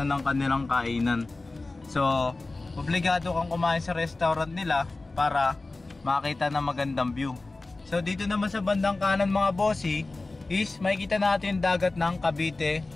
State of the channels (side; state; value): right; quieter; 3.2 dB